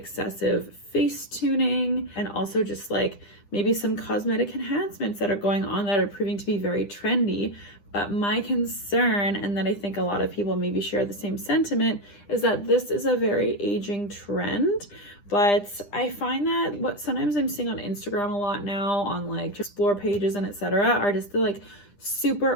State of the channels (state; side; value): late; right; 9.9 ms